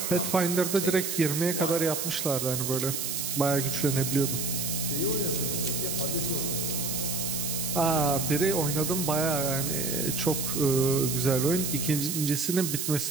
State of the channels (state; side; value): noise; right; hiss, 2 dB below the sound